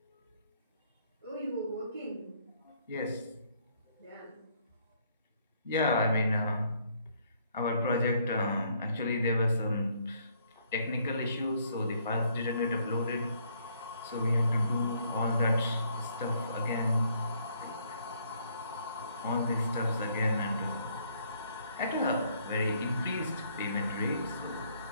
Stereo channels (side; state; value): both; inverted; correlation -0.67